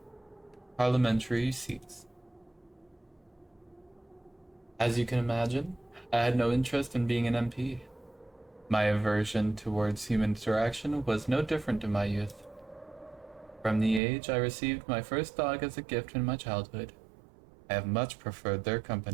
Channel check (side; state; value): left; drops out; at 14.0 s